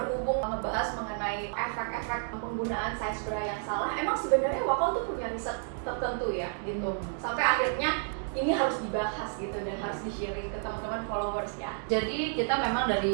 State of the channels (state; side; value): silent; left; 57 dB below the other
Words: ngebahas mengenai efek-efek penggunaan size bra yang salah, emang sebenarnya Wakal tuh punya riset tertentu ya gitu. Sampai akhirnya ini harus dibahas gitu dan harus di-sharing ke teman-teman followers ya. Jadi kita memang